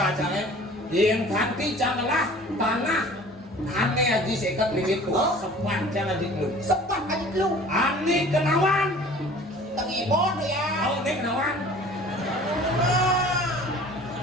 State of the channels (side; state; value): both; normal; correlation 0.46